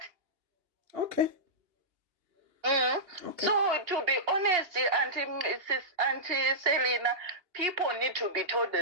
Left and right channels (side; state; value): left; late; 2.8 ms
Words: Okay. Okay. So, to be honest, Auntie Selena, people need to be told